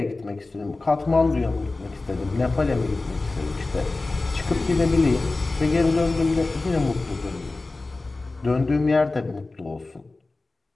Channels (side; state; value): right; quieter; 3.3 dB